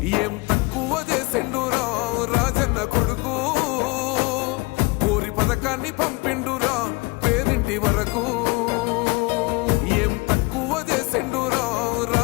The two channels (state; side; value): quieter; right; 25.0 dB